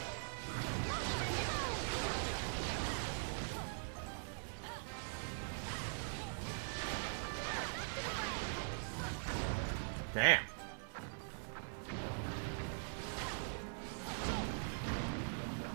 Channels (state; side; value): silent; left; digital silence